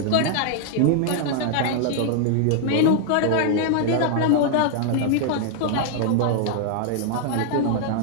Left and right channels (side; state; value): both; different; correlation 0.00